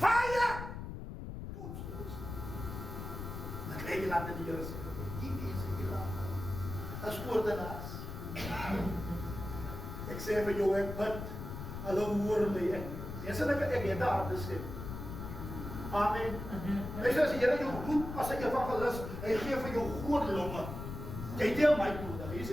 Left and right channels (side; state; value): left; noise; rumble, 8 dB below the sound